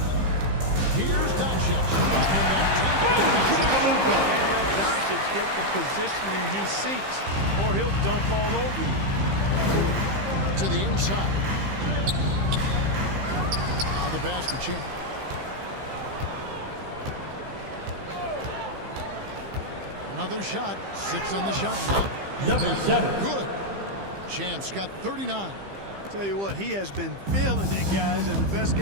Here's Doncic. And the dunk by Doncic. Can't let Doncic get the positioning he seeks, or he'll dunk all over you. To the inside. Now the pass to Champ. Another shot. 6 on the shot clock. Number 7. Good. Champ's got 39. Tell you what, he has been feeling it, guys, and the best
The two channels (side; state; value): left; late; 15 ms